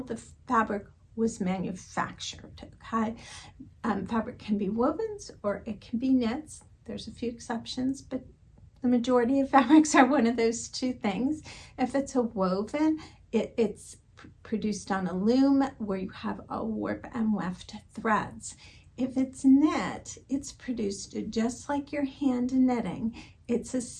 fabric was manufactured. Okay, fabric can be wovens or it can be knits. There's a few exceptions, but the majority of fabrics are one of those two things. If it's a woven, it's produced on a loom where you have a warp and weft threads. If it's knit, it's produced just like your hand knitting. It's a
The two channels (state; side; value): identical; both; correlation 1.00